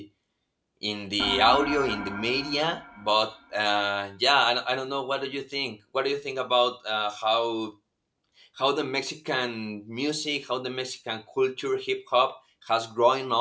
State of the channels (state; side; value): identical; both; correlation 1.00